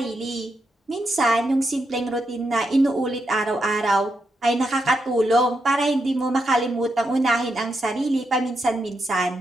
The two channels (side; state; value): both; normal; correlation 0.83